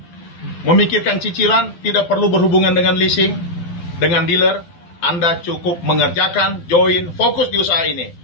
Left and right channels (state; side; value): late; right; 12 ms